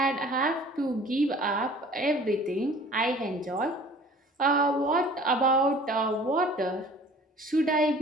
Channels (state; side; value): normal; both; correlation 0.48